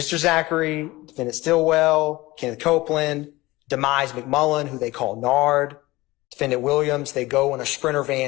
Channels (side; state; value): right; quieter; 19.8 dB